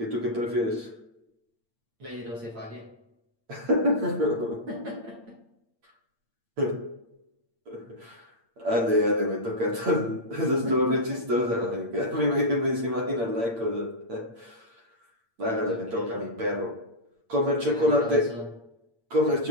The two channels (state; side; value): late; left; 8.7 ms